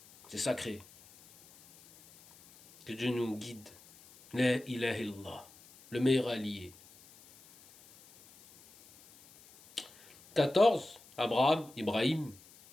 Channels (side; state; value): left; noise; hiss, 24 dB below the sound